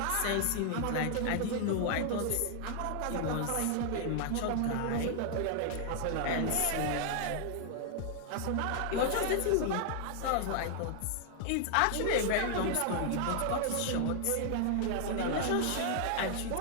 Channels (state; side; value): different; both; correlation 0.00